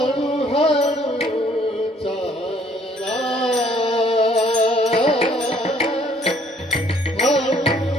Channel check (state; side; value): normal; both; correlation 0.61